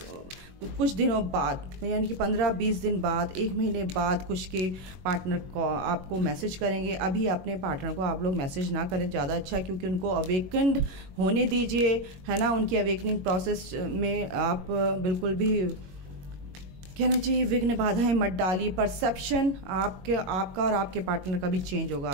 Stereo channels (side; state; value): left; late; 21 ms